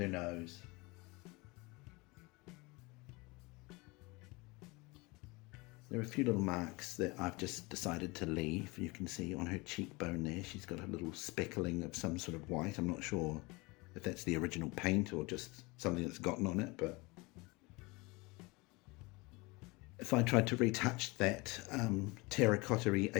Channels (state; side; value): quieter; right; 25.2 dB